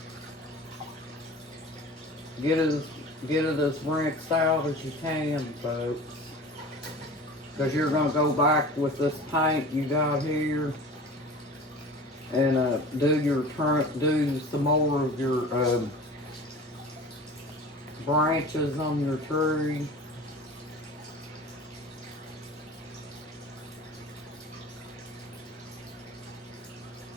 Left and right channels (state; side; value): normal; both; correlation 0.39